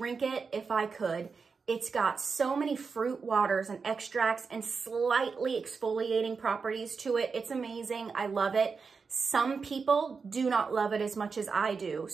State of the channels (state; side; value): quieter; left; 5.1 dB